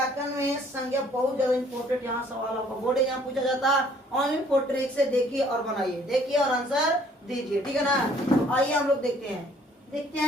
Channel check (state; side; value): normal; both; correlation 0.60